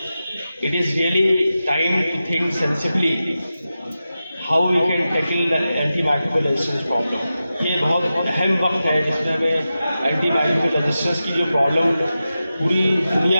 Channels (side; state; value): both; inverted; correlation -0.92